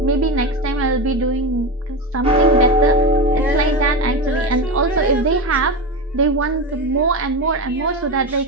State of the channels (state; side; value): normal; both; correlation 0.19